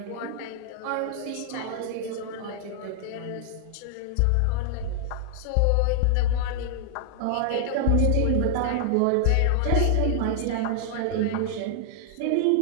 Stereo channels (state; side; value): different; both; correlation 0.00